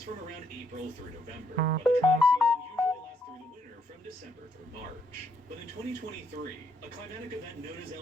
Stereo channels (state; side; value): normal; both; correlation 0.73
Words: from around April through November, while the dry season usually lasts through the winter from December through March. But in 2023, a climatic event known as